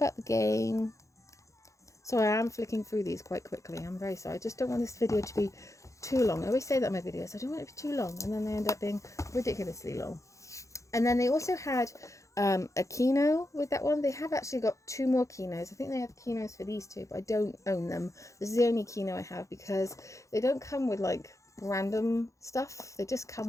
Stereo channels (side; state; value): right; late; 0.15 ms